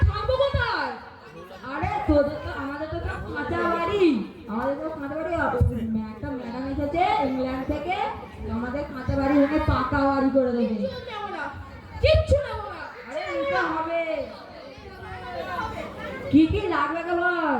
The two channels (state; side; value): identical; both; correlation 1.00